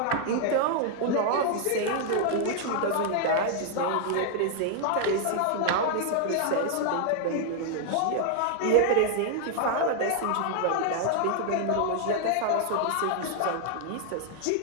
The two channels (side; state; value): both; different; correlation 0.00